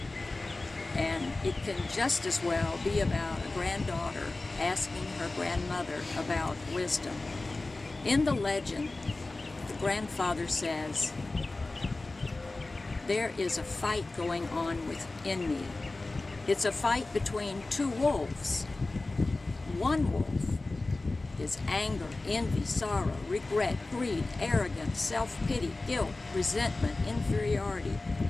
And it can just as well be about a granddaughter asking her grandmother about wisdom. In the legend, the grandfather says, "There is a fight going on within me. It's a fight between two wolves. One wolf is anger, envy, sorrow, regret, greed, arrogance, self-pity, guilt, resentment, inferiority,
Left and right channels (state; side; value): quieter; right; 3.2 dB